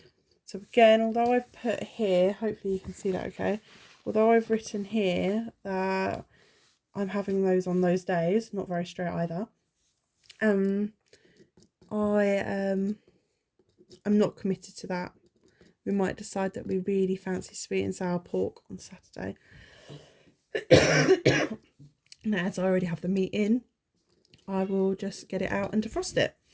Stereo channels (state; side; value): identical; both; correlation 1.00